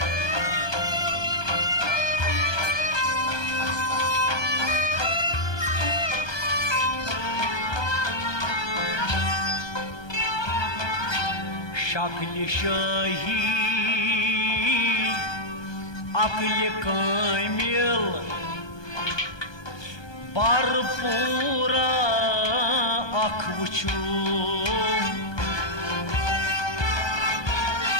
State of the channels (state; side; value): late; right; 1.2 ms